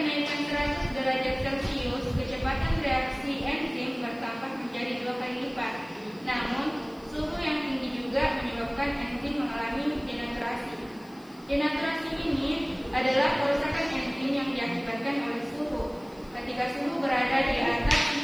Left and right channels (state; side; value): noise; left; hiss, 29 dB below the sound